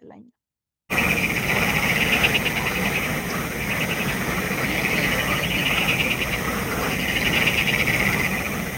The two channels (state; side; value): identical; both; correlation 1.00